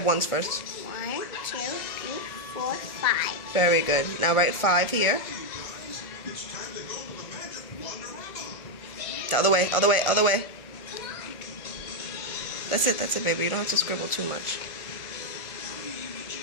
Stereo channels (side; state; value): right; late; 1.4 ms